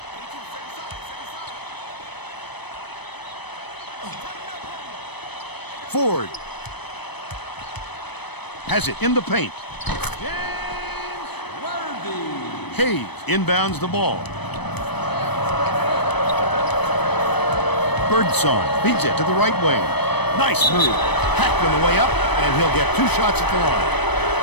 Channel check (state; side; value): late; right; 0.99 ms